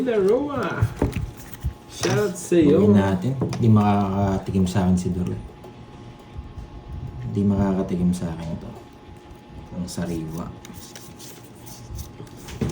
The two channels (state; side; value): identical; both; correlation 1.00